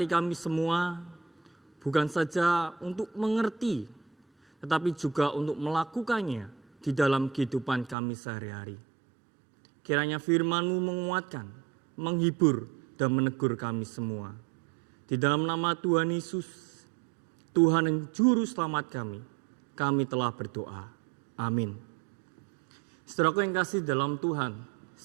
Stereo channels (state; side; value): drops out; left; at 8.0 s